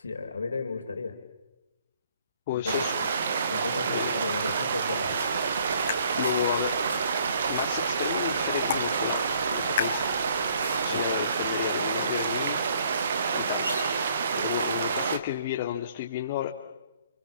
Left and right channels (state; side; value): inverted; both; correlation -0.62